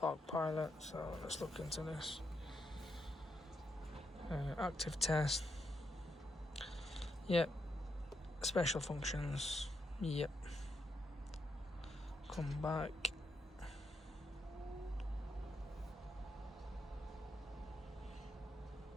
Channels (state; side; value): normal; both; correlation 0.81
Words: pilot, so let's look into this. Active test, yep. Special functions, yep. Come back.